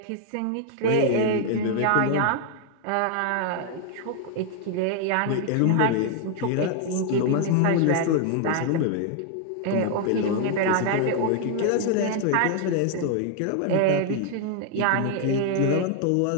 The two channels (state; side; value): different; both; correlation 0.00